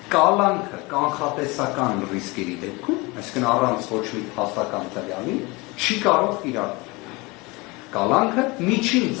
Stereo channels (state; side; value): quieter; right; 24.8 dB